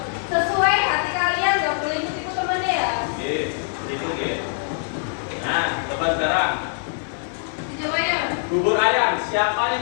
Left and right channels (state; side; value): silent; right; digital silence